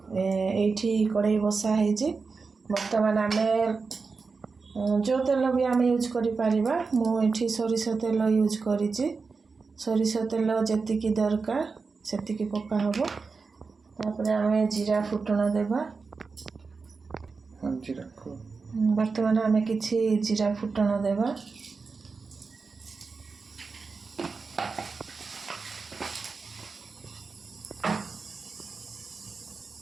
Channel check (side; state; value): left; quieter; 4.6 dB